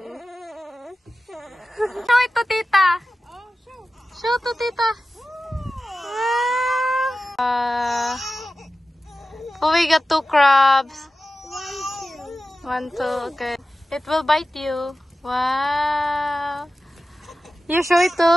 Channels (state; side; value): normal; both; correlation 0.94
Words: Show it to Tita. Show to Tita. Oh, we got two crabs. 1, 2, okay. It will bite you. Wow. You show it